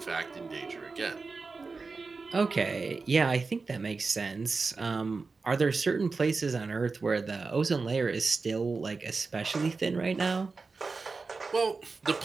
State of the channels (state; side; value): quieter; left; 4.2 dB